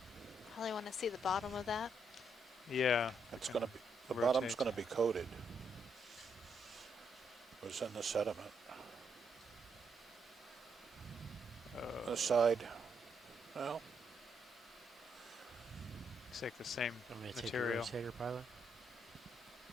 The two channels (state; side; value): normal; both; correlation 0.77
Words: Probably want to see the bottom of that. Yeah. It's going to be, the bottom's going to be coated. It was in the sediment. the side. Well, Looks like the same I'm going to material. take your rotator pilot.